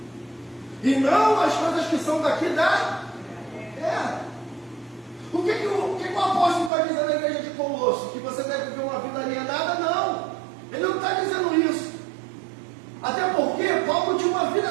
e não as coisas que são daqui da terra. O que o apóstolo está dizendo na igreja de Colosso? Que você deve viver uma vida alienada? Não, ele não está dizendo isso. Até porque Paulo tinha uma vida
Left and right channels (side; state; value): left; drops out; at 6.7 s